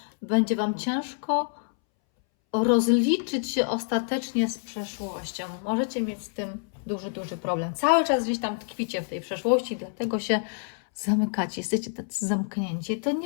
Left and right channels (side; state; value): right; silent; 60 dB below the other